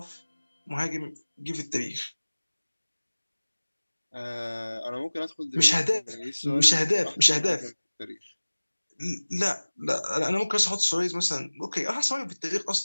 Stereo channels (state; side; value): inverted; both; correlation -1.00